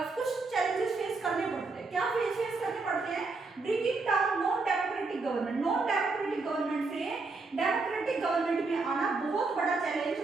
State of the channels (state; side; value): quieter; left; 3.9 dB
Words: कुछ चैलेंजेस फेस करने पड़ते हैं। क्या फेस करने पड़ते हैं? Bringing down non democratic government, non democratic government से डेमोक्रेटिक गवर्नमेंट में आना बहुत बड़ा चैलेंज